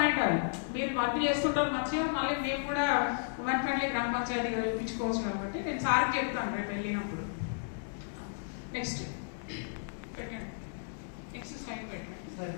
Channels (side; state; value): right; silent; digital silence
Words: అది, మీరు వర్క్ చేస్తుంటారు మంచిగా, మళ్ళీ మేము కూడా ఉమెన్ ఫ్రెండ్లీ గ్రామ పంచాయతీగా చూపించుకోవచ్చు కాబట్టి నేను సార్కి చెప్తాను రేపు వెళ్ళినప్పుడు. నెక్స్ట్ పెట్టండి, నెక్స్ట్ స్లైడ్